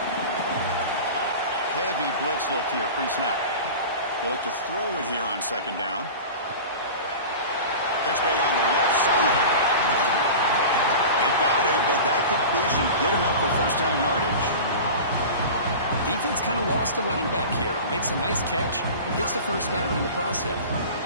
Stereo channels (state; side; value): inverted; both; correlation -0.34